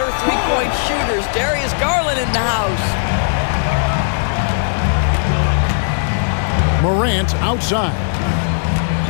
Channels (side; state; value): right; silent; 64 dB below the other